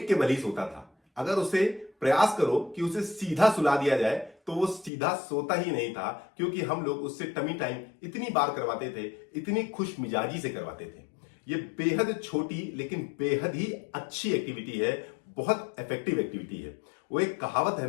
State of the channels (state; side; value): drops out; right; at 4.9 s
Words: के बल ही सोता था। अगर उसे प्रयास करो कि उसे सीधा सुला दिया जाए तो वो सीधा सोता ही नहीं था, क्योंकि हम लोग उससे टमी टाइम इतनी बार करवाते थे, इतनी खुश मिजाजी से करवाते थे। ये बेहद छोटी लेकिन बेहद ही अच्छी एक्टिविटी है, बहुत इफेक्टिव एक्टिविटी है। वो एक कहावत है